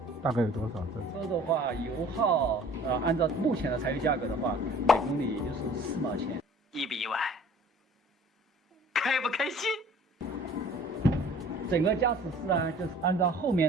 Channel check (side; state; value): both; normal; correlation 0.50